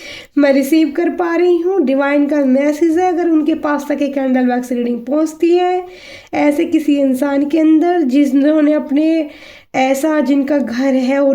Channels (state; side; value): identical; both; correlation 1.00